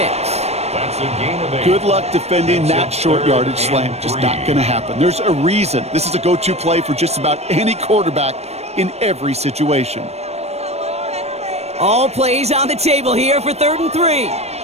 That's a gain of 8. Good luck defending that short yardage slant. Just not going to happen. There's a reason. This is a go-to play for just about any quarterback in every situation. All plays on the table here for 3rd and 3.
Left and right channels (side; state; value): left; late; 0.31 ms